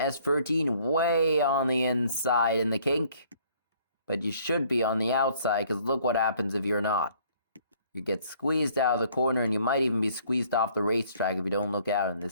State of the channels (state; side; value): inverted; both; correlation -0.60